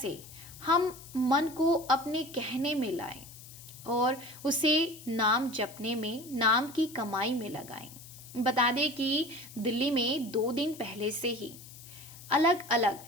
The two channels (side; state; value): left; noise; hiss, 17 dB below the sound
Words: हम मन को अपने कहने में लाएं और उसे नाम जपने में, नाम की कमाई में लगाएं। बता दें कि दिल्ली में 2 दिन पहले से ही अलग अलग